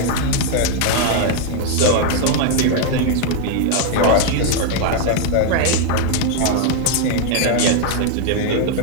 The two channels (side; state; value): both; different; correlation 0.00